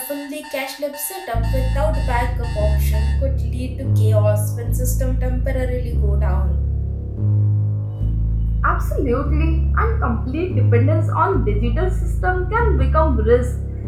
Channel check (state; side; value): identical; both; correlation 1.00